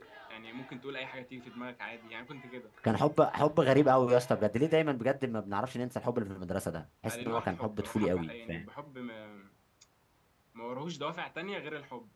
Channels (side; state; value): both; identical; correlation 1.00